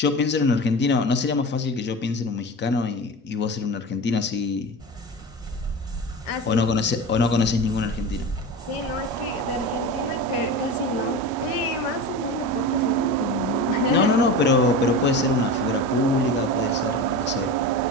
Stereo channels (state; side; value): normal; both; correlation 0.28